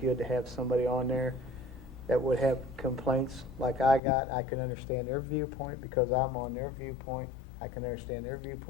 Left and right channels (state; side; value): drops out; right; at 4.0 s